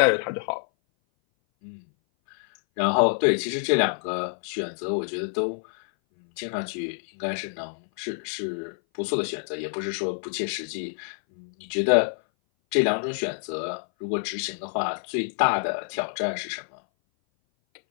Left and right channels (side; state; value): right; silent; 58 dB below the other